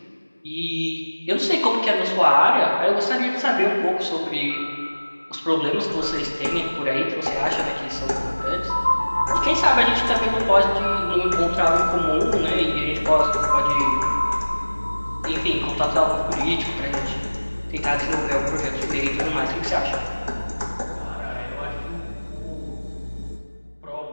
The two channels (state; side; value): inverted; both; correlation -1.00